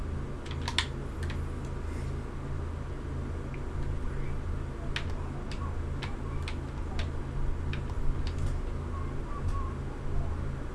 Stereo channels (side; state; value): both; identical; correlation 1.00